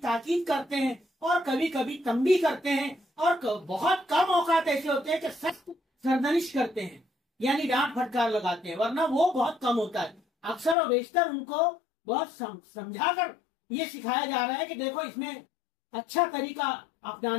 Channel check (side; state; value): right; drops out; at 10.8 s